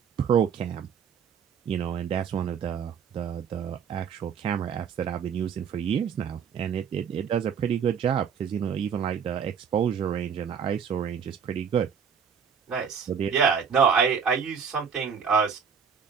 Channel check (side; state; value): left; quieter; 7.0 dB